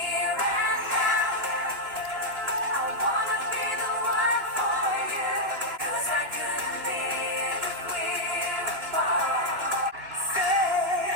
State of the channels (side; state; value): left; late; 3.1 ms